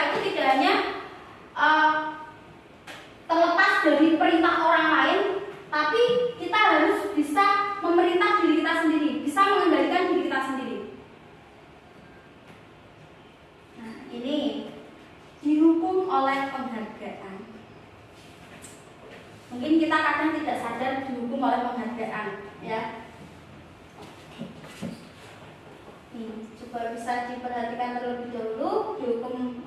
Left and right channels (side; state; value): both; identical; correlation 1.00